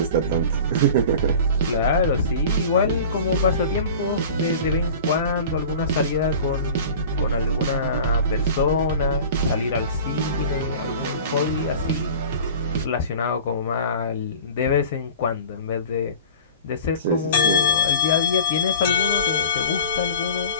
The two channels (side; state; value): both; inverted; correlation -0.39